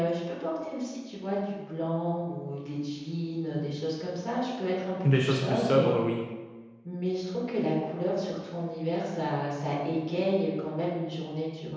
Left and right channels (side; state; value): both; identical; correlation 1.00